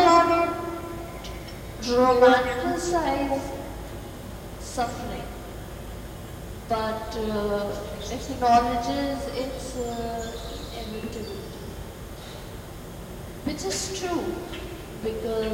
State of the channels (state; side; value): identical; both; correlation 1.00